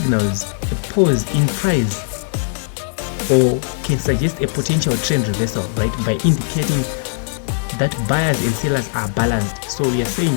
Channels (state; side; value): silent; right; digital silence